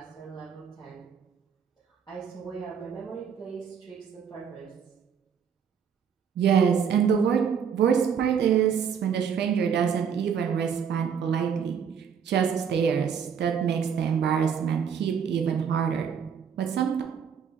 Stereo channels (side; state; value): left; quieter; 7.3 dB